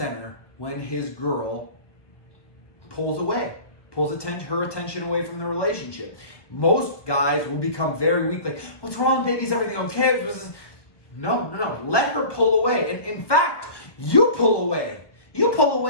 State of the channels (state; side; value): late; right; 1.2 ms